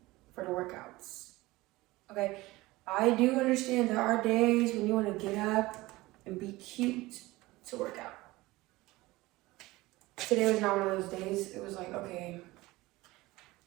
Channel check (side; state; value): left; quieter; 19.8 dB